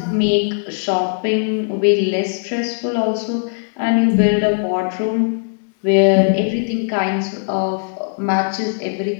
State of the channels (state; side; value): silent; right; digital silence